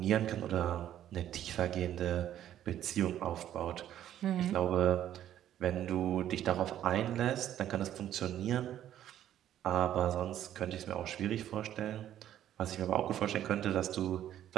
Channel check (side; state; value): left; quieter; 11.4 dB